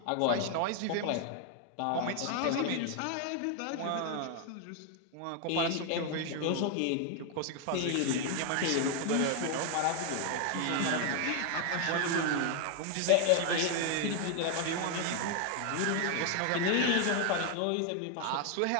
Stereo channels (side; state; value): both; different; correlation 0.00